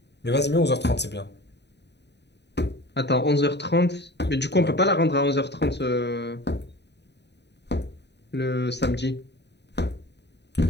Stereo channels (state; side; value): late; right; 0.50 ms